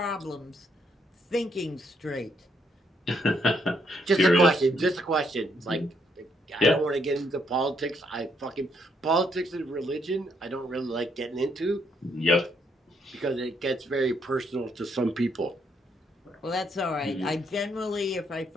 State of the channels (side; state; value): both; normal; correlation 0.73